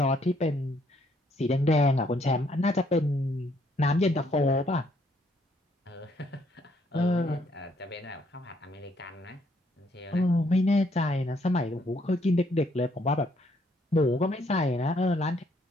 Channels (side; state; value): both; normal; correlation 0.69